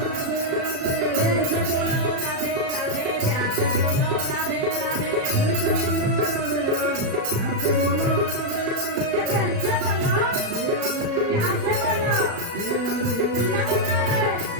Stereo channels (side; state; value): left; late; 36 ms